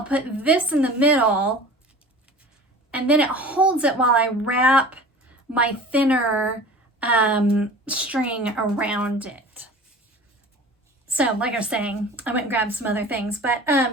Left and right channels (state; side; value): normal; both; correlation 0.40